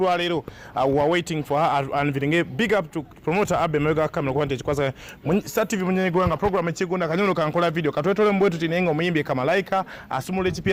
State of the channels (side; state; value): both; identical; correlation 1.00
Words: lwa leero we are waiting for her unveiling. Big up to promoter Abe Mega Camera kwa ntechi kwaza Star TV munyenye gwanga program ekigunda kanyono kankola video katwetole mbwetu tinenga omuyimbi Kamalaika asumule